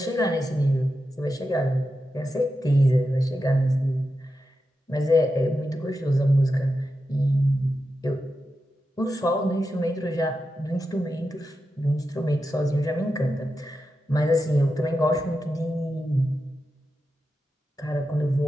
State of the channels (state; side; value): normal; both; correlation 0.89